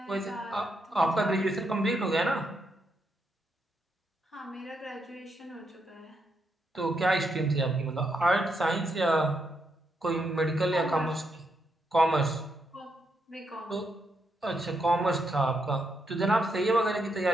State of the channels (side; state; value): both; normal; correlation 0.80